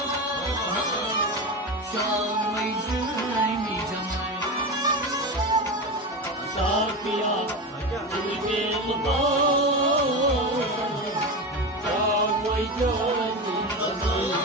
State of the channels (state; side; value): normal; both; correlation 0.21